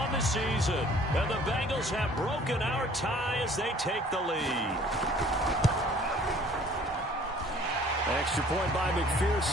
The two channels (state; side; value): normal; both; correlation 0.54